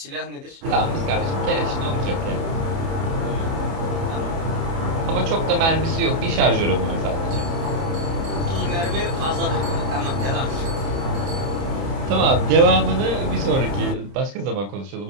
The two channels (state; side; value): late; left; 30 ms